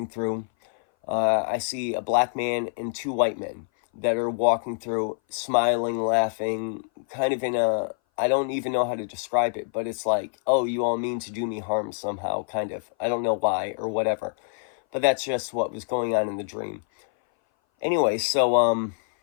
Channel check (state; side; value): silent; right; 58 dB below the other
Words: through. I see a black man and two white men that are walking through, smiling, laughing, kind of in a, I don't even know how to describe it, but it's like, oh, you all mean to do me harm somehow, kind of. I don't know why or whatever. But that's just what was going on in the dream. Anyway, so,